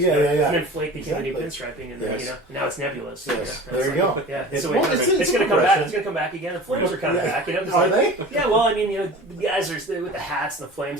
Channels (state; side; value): normal; both; correlation 0.38